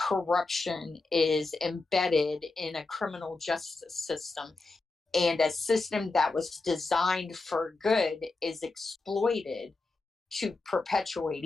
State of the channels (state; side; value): quieter; right; 3.5 dB